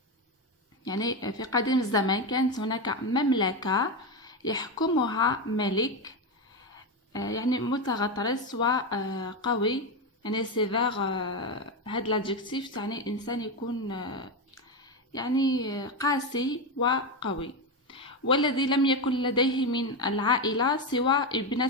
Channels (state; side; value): normal; both; correlation 0.12